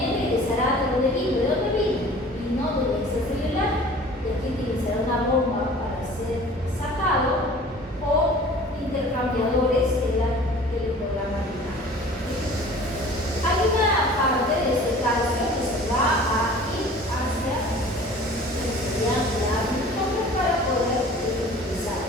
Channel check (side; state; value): both; normal; correlation 0.45